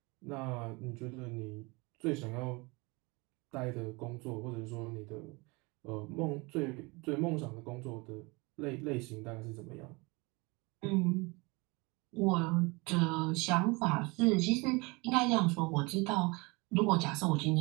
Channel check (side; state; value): left; quieter; 26.4 dB